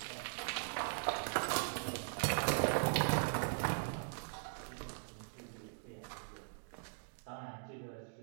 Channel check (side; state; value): left; silent; digital silence